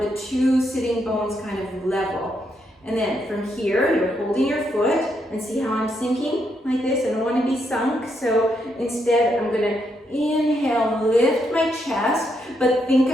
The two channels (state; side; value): normal; both; correlation 0.78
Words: the two sitting bones kind of level. And then from here, you're holding your foot, and see how I'm sinking like this? I don't want to be sunk, so instead I'm going to inhale, lift my chest, but think